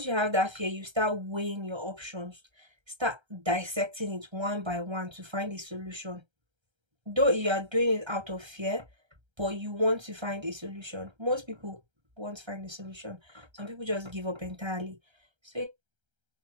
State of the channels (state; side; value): late; left; 1.3 ms